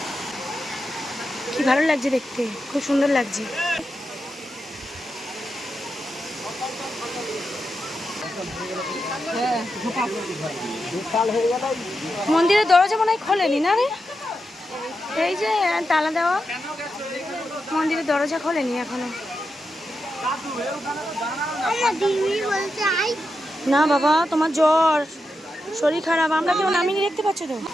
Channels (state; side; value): normal; both; correlation 0.87